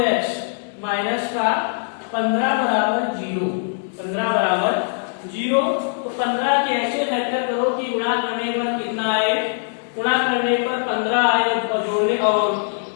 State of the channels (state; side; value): silent; right; 59 dB below the other